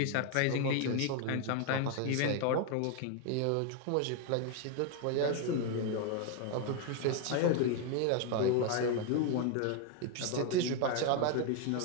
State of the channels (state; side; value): different; both; correlation 0.01